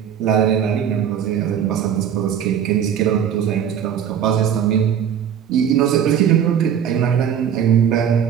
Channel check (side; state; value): left; quieter; 8.8 dB